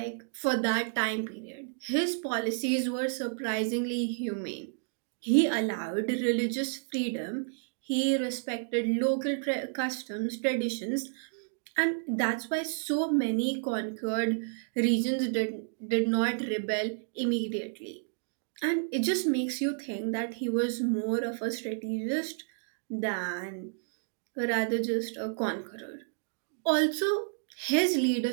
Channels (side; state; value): left; silent; digital silence